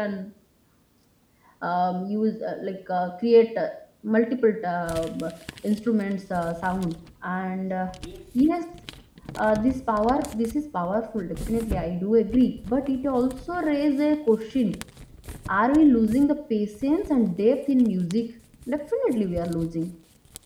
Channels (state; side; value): identical; both; correlation 1.00